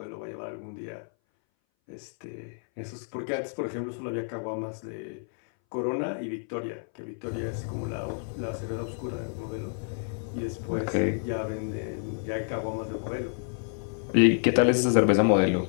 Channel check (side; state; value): right; silent; 58 dB below the other